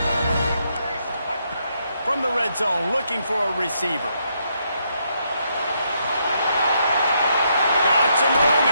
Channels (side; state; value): both; inverted; correlation -0.76